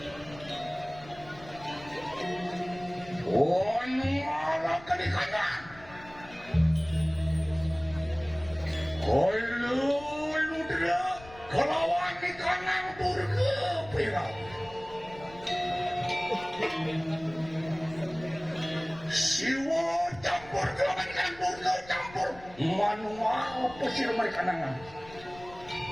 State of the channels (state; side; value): noise; left; rumble, 20 dB below the sound